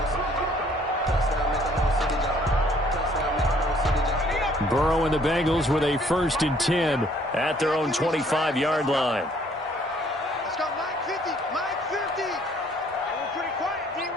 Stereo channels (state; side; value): normal; both; correlation 0.61